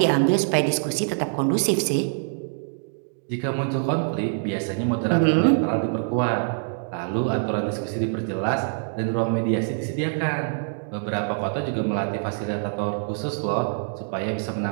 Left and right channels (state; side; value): silent; left; digital silence